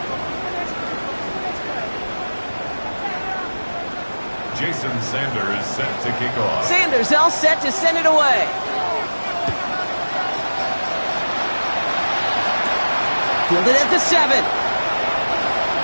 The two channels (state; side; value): inverted; both; correlation -1.00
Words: Jason Sanders set to kick off. Sanders all set to send it away. Fielded at the 7.